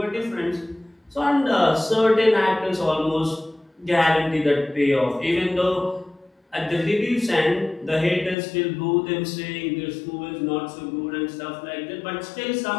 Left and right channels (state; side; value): drops out; right; at 8.3 s